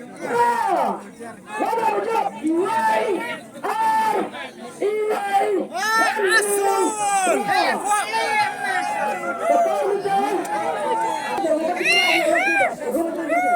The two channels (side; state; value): both; identical; correlation 1.00